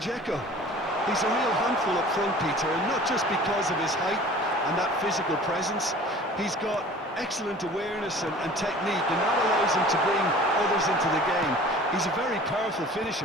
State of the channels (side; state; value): both; normal; correlation 0.45